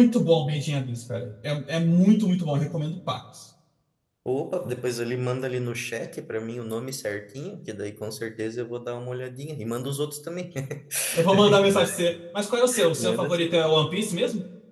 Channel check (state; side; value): identical; both; correlation 1.00